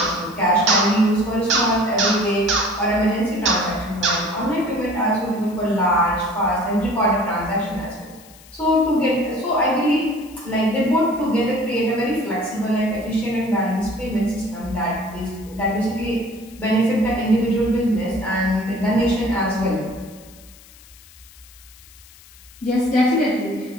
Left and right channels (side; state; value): left; noise; hiss, 23 dB below the sound